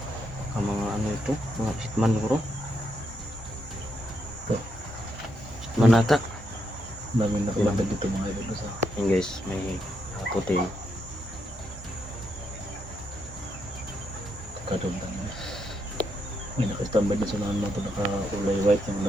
Ang mga ano ito, mga hitman bro. Ito. Hitman ata. Dami na kailangan dito mga ibig sa Yan guys, may puti. kakadong tanong. May nakastambay na sa nahan mo ito naka-ulay white yung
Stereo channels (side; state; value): both; normal; correlation 0.79